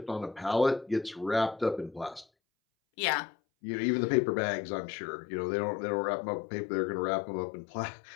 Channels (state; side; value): drops out; right; at 2.2 s